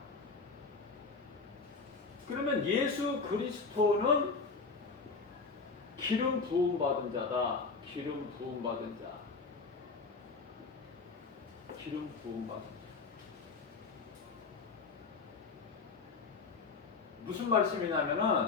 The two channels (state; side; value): quieter; right; 4.6 dB